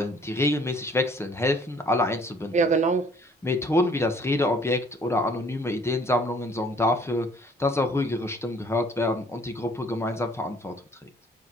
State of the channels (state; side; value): normal; both; correlation 0.58